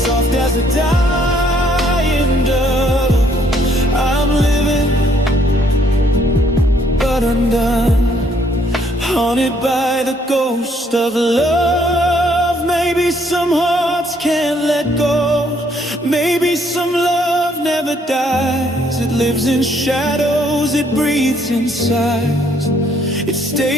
as a dying dove. I'm living, but undone, haunted by the ghost of love. Maybe some hearts can't let go. Maybe some love never dies. It lives in shadows, it breathes in sighs. It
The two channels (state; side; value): normal; both; correlation 0.67